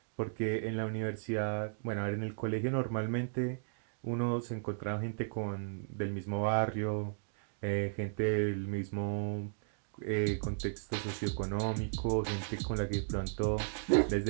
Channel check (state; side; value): silent; left; digital silence